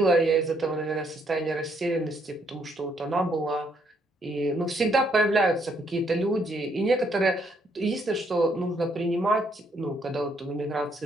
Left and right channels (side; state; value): both; normal; correlation 0.71